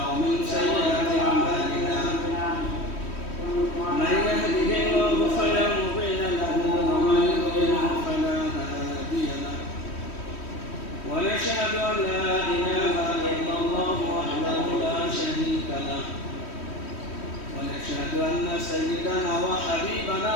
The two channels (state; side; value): late; right; 3.1 ms